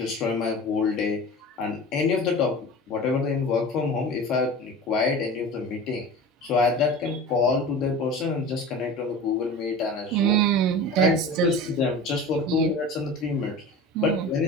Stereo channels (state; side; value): normal; both; correlation 0.35